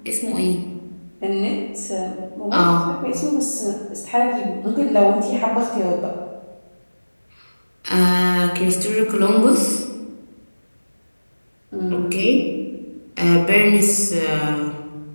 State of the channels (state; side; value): inverted; both; correlation -1.00